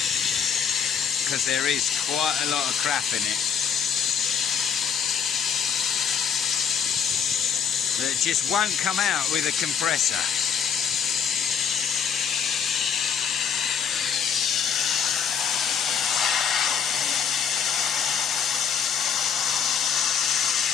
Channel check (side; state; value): right; quieter; 7.3 dB